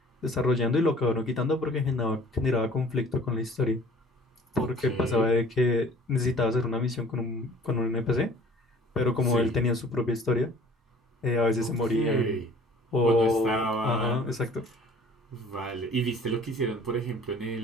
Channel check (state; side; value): normal; both; correlation 0.50